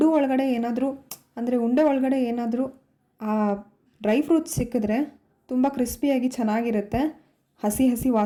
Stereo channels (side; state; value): both; identical; correlation 1.00